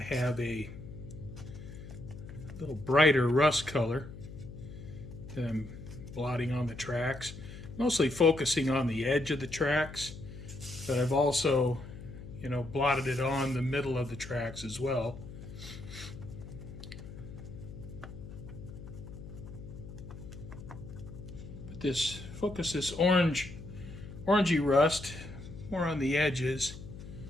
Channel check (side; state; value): left; noise; hum, 13 dB below the sound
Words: a little brighter rust color that I'm blotting on the tracks, mostly focusing on the edge of the tracks, but I've also, blotted it on the middle of the tracks as well. But this orangey rust more on the edges.